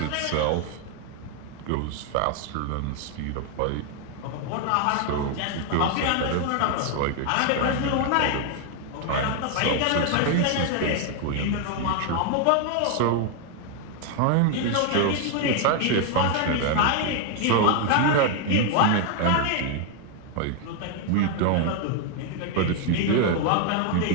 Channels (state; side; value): different; both; correlation 0.00